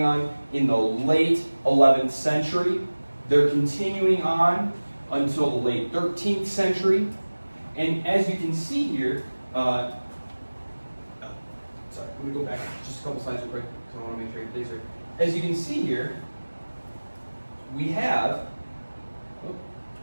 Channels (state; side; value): inverted; both; correlation -1.00